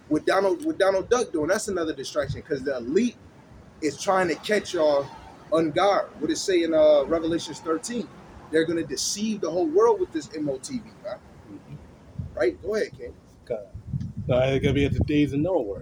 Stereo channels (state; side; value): identical; both; correlation 1.00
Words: With Donald Duck doing, that's another distraction because the elite is trying to catch y'all on guard. What it say in Revelations 13? They're gonna deceive the whole world with this MOTV, man. Right? Go ahead, King. It's gonna be at the days of